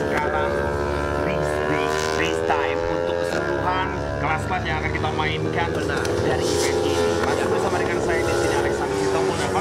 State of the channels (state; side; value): identical; both; correlation 1.00